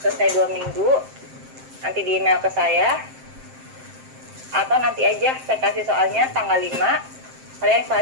selesai 2 minggu, nanti di email ke saya. Atau nanti aja saya kasih soalnya tanggal 5, kalian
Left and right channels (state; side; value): late; left; 7.6 ms